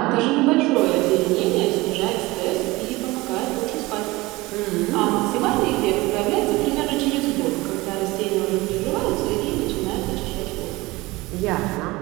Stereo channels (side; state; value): left; quieter; 21.2 dB